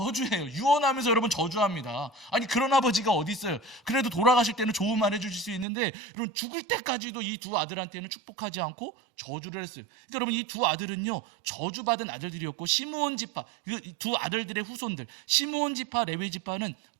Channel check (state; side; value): drops out; left; at 5.7 s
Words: 유언하면서 여러분 저주합니다. 아니 그런 아버지가 어디 있어요? 그래도 돌아가실 때는 좋은 말 해주실 수 있는데 여러분 죽을 때까지도 이 두 아들한테는 축복하지 않고 저주를 했어요. 그러니까 여러분 이 두 아들은요 저주받은 아들들이었고 시므온 지파 이 두 아들들의 후손들 시므온 지파 레위 지파는